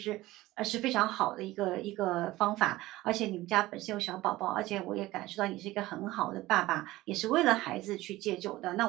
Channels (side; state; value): left; quieter; 17.7 dB